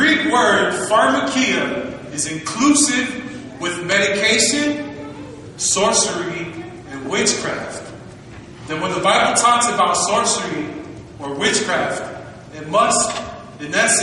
word pharmakia is inclusive with medication, sorcery, and witchcraft, then when the Bible talks about sorcery or witchcraft, it must, in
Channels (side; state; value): both; identical; correlation 1.00